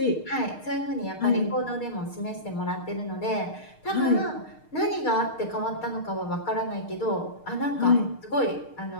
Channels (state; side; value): late; right; 6.5 ms